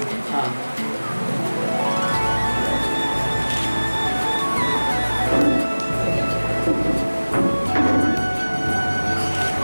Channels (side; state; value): both; inverted; correlation -1.00